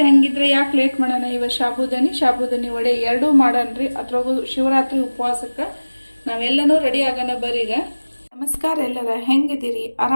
ಹಂಗಿದ್ರೆ ಯಾಕೆ ಲೇಟ್ ಮಾಡೋಣ, ಇವತ್ತು ಸಾಬುದಾನಿ ವಡೆ ಎರಡೂ ಮಾಡನ್ರಿ. ಅದ್ರಾಗೂ ಶಿವರಾತ್ರಿ ಉಪವಾಸಕ್ಕೆ ನಾವೆಲ್ಲನೂ ರೆಡಿ ಆಗೋಣ ಬರ್ರಿ. ಈಗ ನಮಸ್ಕಾರ ಎಲ್ಲರ, ಹೆಂಗಿದ್ದೀರಿ?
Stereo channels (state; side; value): inverted; both; correlation -1.00